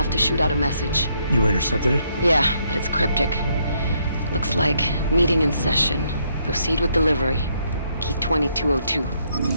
to shoot out a message. You intercepted it? Yeah, but it's cryptic. Looks like meeting in session. Proceed with delivery. Key 2202.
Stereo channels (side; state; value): both; inverted; correlation -0.73